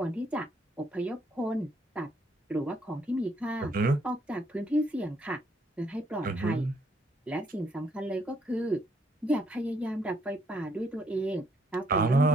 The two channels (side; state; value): both; normal; correlation 0.70